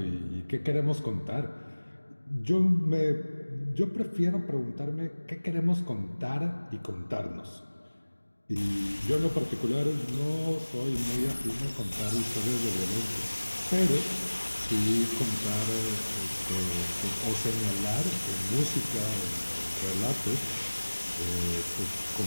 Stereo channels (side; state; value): both; inverted; correlation -1.00